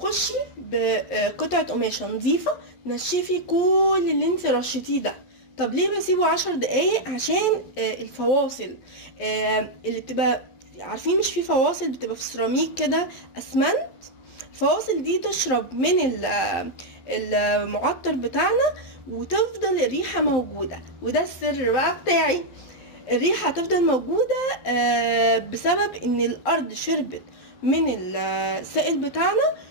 بقطعه قماشه نظيفه نشفي كل اللي انت رشيتيه ده. طب ليه بسيبه 10 دقايق؟ عشان الفواصل اللي بتبقى، عارفين مش في فواصل بتبقى في سيراميك كده اسمنت، الفواصل دي تشرب من المعطر بتاعنا وتفضل الريحة موجودة. وده السر بقى بتاعي، الريحة هتفضل موجودة بسبب ان الارض شربت من السائل بتاعنا،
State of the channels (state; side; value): late; right; 11 ms